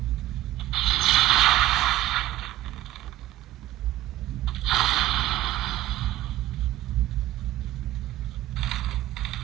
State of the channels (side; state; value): left; quieter; 15.0 dB